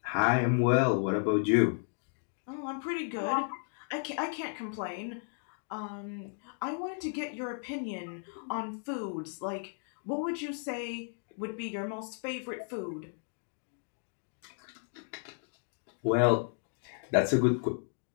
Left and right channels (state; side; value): silent; right; 55 dB below the other